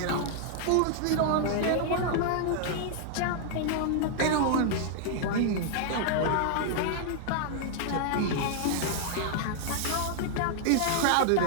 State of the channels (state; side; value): different; both; correlation -0.01